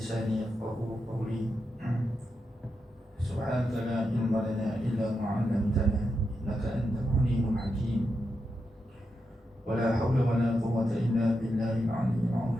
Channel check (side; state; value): both; normal; correlation 0.86